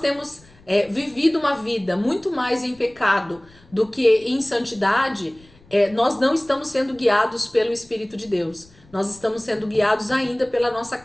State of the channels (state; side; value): noise; left; rumble, 27 dB below the sound